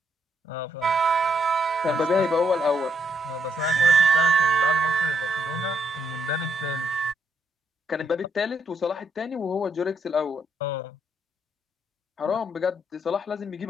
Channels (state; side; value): normal; both; correlation 0.76